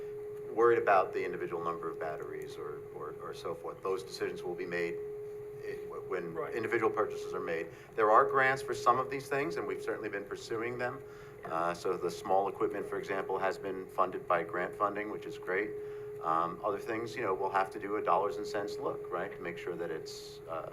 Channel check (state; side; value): identical; both; correlation 1.00